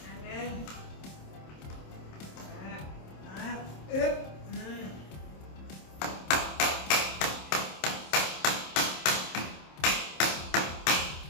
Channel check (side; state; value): right; late; 27 ms